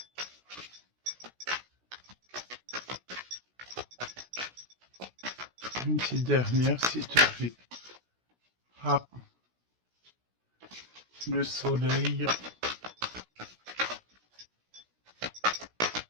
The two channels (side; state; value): left; late; 16 ms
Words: Une petite dernière, s'il te plaît. Ah, le soleil.